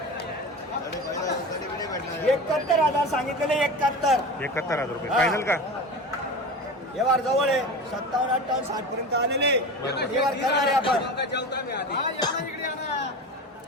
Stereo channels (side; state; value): both; normal; correlation 0.30